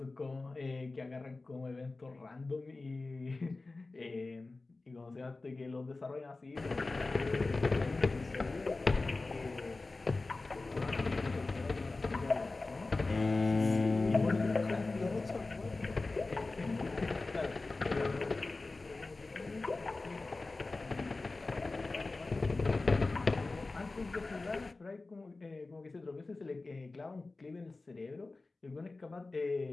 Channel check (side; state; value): right; quieter; 3.4 dB